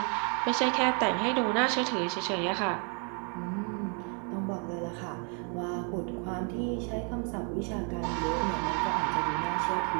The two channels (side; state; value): left; quieter; 38.2 dB